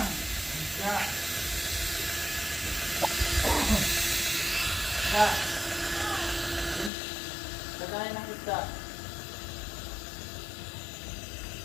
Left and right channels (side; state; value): right; drops out; at 6.9 s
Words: Ya. Lagayan ng isda.